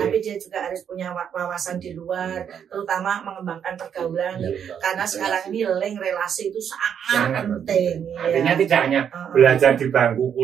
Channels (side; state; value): left; quieter; 8.3 dB